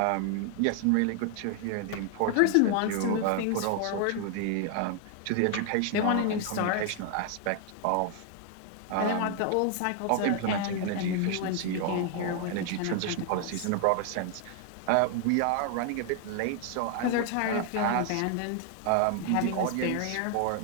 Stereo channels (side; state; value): both; different; correlation 0.00